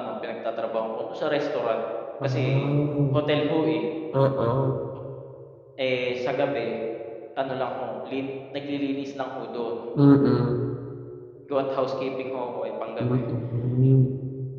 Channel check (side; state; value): both; identical; correlation 1.00